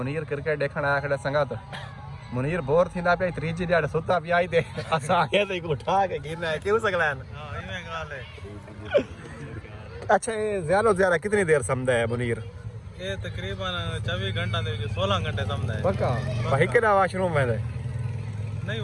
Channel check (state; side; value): identical; both; correlation 1.00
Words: क्रिकेट देखण आया खड़ा संगत। मुनीर बोर थींदा पे त्रीजी ॾाढ सुता पिया आई ते असां आगे ते उठा के गिरना है क्यों सकलैन। हां इमे गाल है। अच्छा ये ज्यादा से ज्यादा कितनी देर समझदा है मुनीर? ये तकरीबन 24 घंटा दे 16 घंटे समझदा है। पक्का भाई के ना वॉशरूम में नहीं